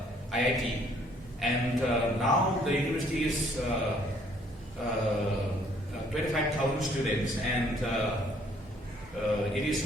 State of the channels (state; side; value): normal; both; correlation 0.62